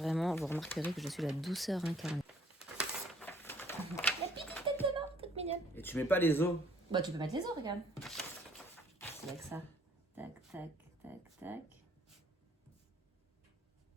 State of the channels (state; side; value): normal; both; correlation 0.61